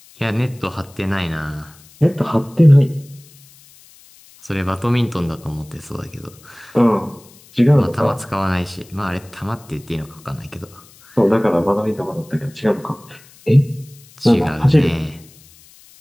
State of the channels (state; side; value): noise; left; hiss, 25 dB below the sound